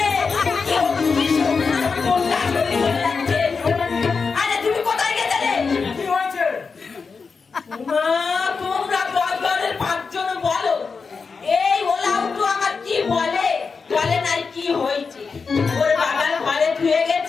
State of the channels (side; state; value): right; quieter; 5.0 dB